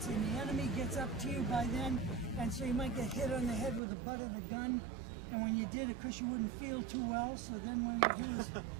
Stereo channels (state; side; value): drops out; left; at 3.8 s